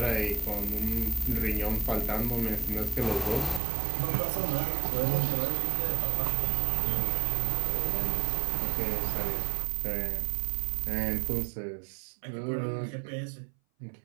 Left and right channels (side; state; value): left; drops out; at 3.6 s